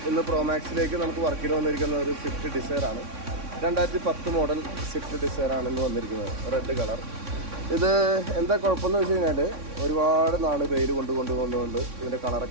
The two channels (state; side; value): late; left; 3.6 ms